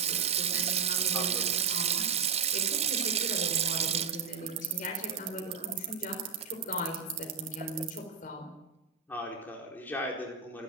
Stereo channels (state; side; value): quieter; left; 6.3 dB